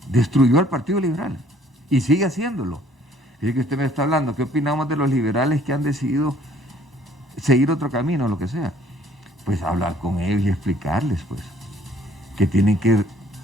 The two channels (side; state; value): both; normal; correlation 0.59